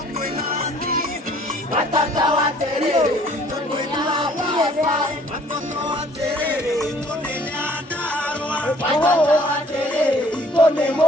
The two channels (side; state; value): both; normal; correlation 0.57